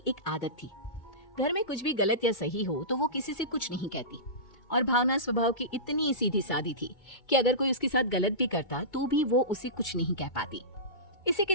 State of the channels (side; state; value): right; late; 2.2 ms